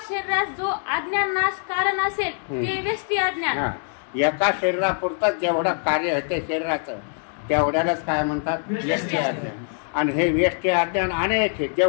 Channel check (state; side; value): silent; right; 58 dB below the other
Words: शरीरात जो अज्ञान नाश कारण असेल ते व्यष्टी अज्ञान. एका शरीरापुरतं जेवढं कार्य होते शरीराचं तेवढ्यालाच काय म्हणतात? व्यष्टी अज्ञान. आणि हे व्यष्टी अज्ञान अनेक आहे.